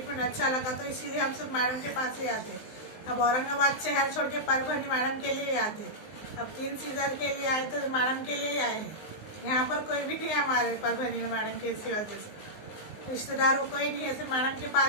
अच्छा लगा, तो इसीलिए हम सब मैडम के पास ही आते। अब औरंगाबाद शहर छोड़ के परभणी मैडम के लिए आते। अब 3 सीजर के लिए आए तो मैडम के लिए आए हैं। यहाँ पर कोई भी नहीं है हमारे परभणी में मैडम के इसी वजह से, रिश्तेदार कोई नहीं है, सिर्फ मैडम के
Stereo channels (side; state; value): right; late; 19 ms